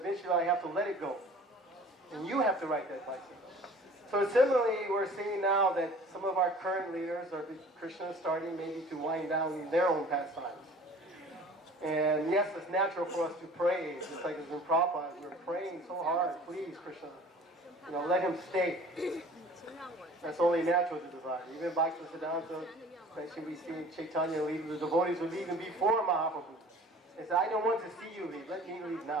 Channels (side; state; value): both; normal; correlation 0.47